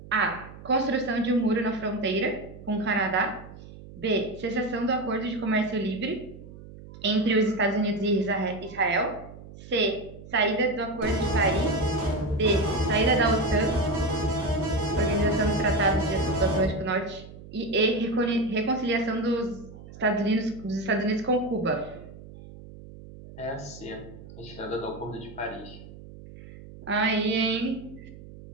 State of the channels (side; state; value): right; noise; hum, 17 dB below the sound